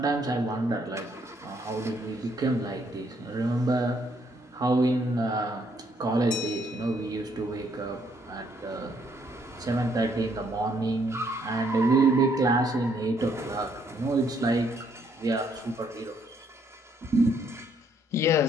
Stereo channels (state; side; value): normal; both; correlation 0.69